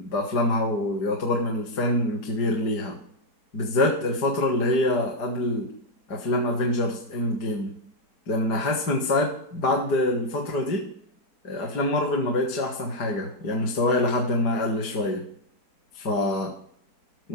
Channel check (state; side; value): late; right; 4.9 ms